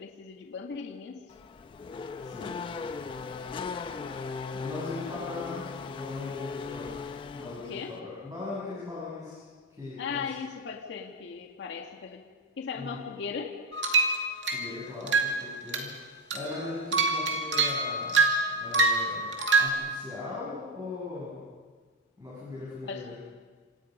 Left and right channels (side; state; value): both; normal; correlation 0.12